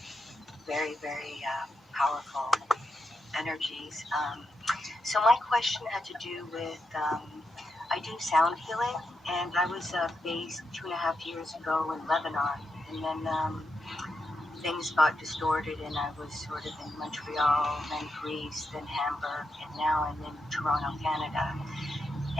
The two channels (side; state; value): both; normal; correlation 0.84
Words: Very, very powerful energies. So my question had to do with I do sound healing, and I was based 2.5 years ago in Lebanon, and then things got distorted, and I was sort of in Montreal, then Greece, then Hamburg, and now I'm in Toronto, Canada.